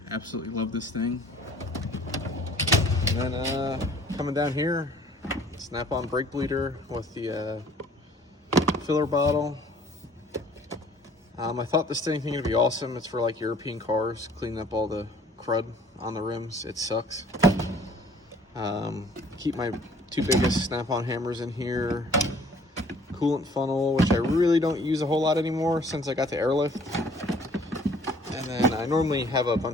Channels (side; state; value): both; normal; correlation 0.55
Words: Absolutely love this thing. And then coming down here, Snap-on brake bleeder with the filler bottle. I thought this thing was gonna be awesome. It's for like European cars, cleaning up all the crud on the rims. It sucks. Keep my 2 biggest Snap-on hammers in here. Coolant funnel, which I really don't use a whole lot anymore since I got the airlift. And then I normally have a